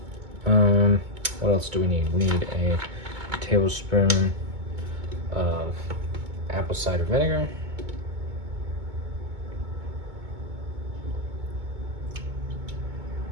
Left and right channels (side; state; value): left; late; 2.2 ms